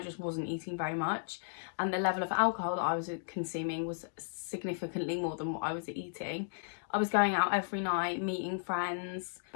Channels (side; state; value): right; silent; digital silence